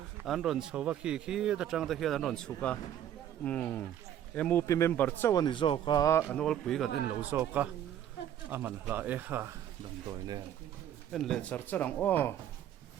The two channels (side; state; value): left; quieter; 10.7 dB